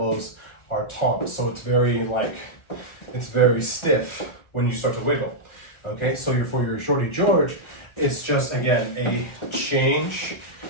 are taut. So it's very stiff when you start to wiggle. Okay, so for your Shorty George, it's just, again, a change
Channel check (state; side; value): late; right; 1.4 ms